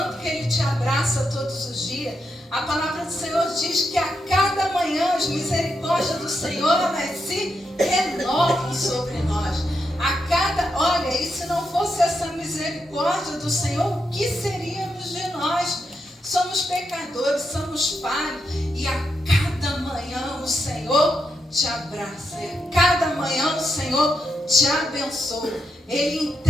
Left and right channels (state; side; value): normal; both; correlation 0.83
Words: que Ele te abraça todos os dias. A palavra do Senhor diz que a cada manhã as misericórdias do Senhor, elas se renovam sobre nós. Olha, e se não fosse essa misericórdia do Senhor, o que seríamos de nós? Somos pecadores, somos falhos, e a cada manhã o Senhor te abraça, a cada manhã o Senhor te abençoa. Ele